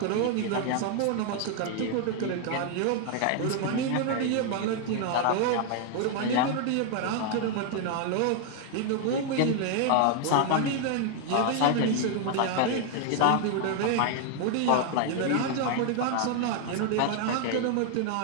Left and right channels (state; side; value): different; both; correlation 0.00